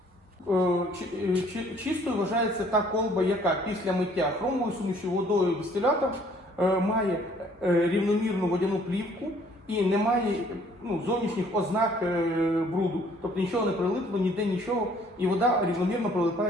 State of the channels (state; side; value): normal; both; correlation 0.59